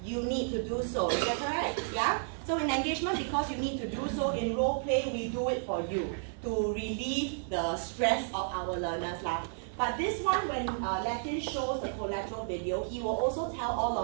you need to do so. Is that correct? Yeah? So in engagement, because you need to do so, in role play, we do it for you to relieve the stress of our learners' life. But this one, when Latin shows the collateral video, he will also tell all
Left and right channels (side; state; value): left; silent; digital silence